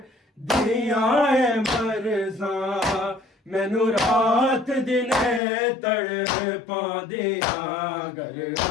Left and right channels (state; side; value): drops out; right; at 5.4 s